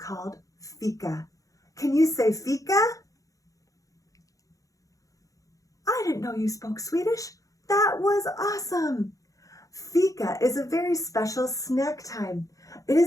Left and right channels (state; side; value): late; right; 0.16 ms